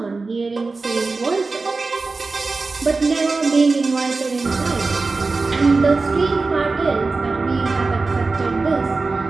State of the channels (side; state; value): left; quieter; 3.9 dB